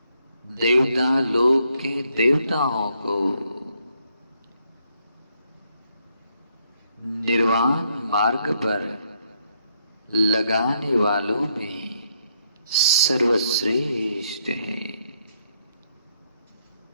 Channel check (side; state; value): both; inverted; correlation -0.74